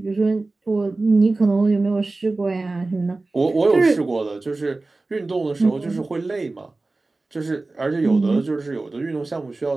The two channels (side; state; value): left; quieter; 3.3 dB